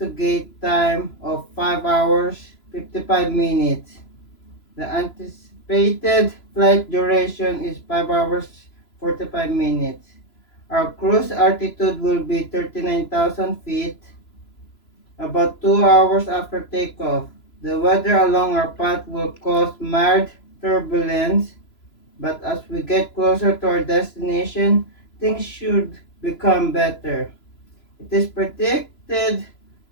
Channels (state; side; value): late; right; 3.0 ms